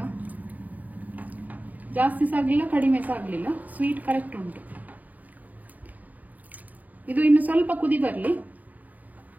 ಜಾಸ್ತಿ ಸಹ ಆಗಲಿಲ್ಲ ಕಡಿಮೆ ಸಹ ಆಗಲಿಲ್ಲ, ಸ್ವೀಟ್ ಕರೆಕ್ಟ್ ಉಂಟು. ಇದು ಇನ್ನು ಸ್ವಲ್ಪ ಕುದಿ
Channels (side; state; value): left; late; 0.078 ms